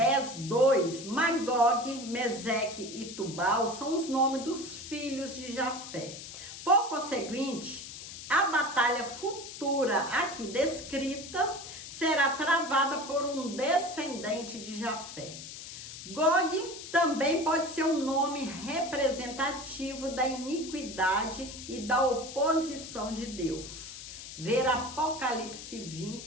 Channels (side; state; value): left; noise; hiss, 11 dB below the sound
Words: 2, Magog, Meseque e Tubal são os nomes dos filhos de Jafé. Por conseguinte, a batalha futura aqui descrita será travada por um descendente de Jafé. Gog também pode ser um nome representativo da iniquidade e da oposição de Deus. Ver Apocalipse